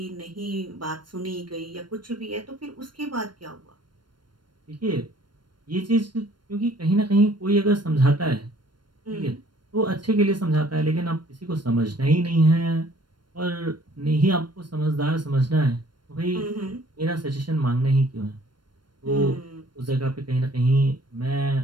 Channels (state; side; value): late; left; 0.72 ms